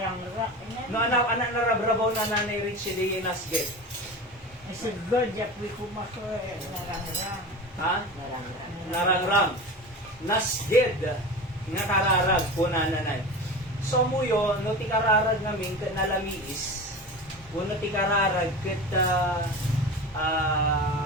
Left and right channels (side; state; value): both; normal; correlation 0.30